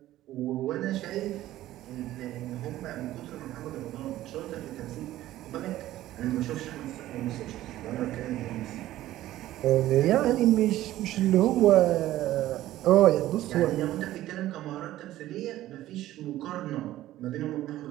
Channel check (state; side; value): quieter; left; 14.6 dB